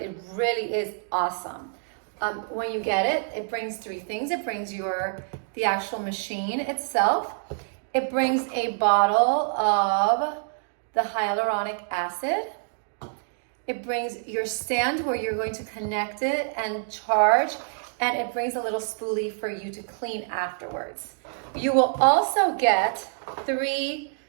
really is awesome. When you get it, it brings three things. It brings the actual machine itself. It brings a bottle of the hyaluronic acid. It brings your stand where you're going to connect it and charge, and it brings a little spoolie for you to clean afterwards. You will also get 3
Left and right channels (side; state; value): left; silent; digital silence